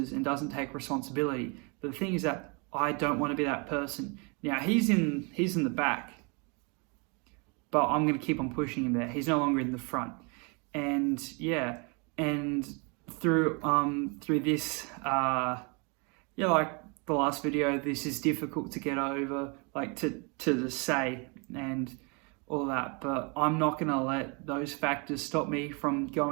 and doesn't take responsibility. But the thing is that I don't want to be that person. Now, he's in the back, but I'm going to keep on pushing him there. He's no longer in the front. And yeah, and through this, like the last video, this is difficult to get over, like to say and all that, but I'm not going to let those factors stop me from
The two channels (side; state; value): left; quieter; 32.8 dB